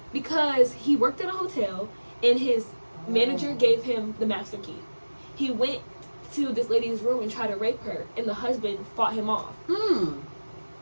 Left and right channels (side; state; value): both; inverted; correlation -1.00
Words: because he worked at a hotel, and his manager gave him the master key. He went to this lady's room and tried to rape her, and the husband fought him off.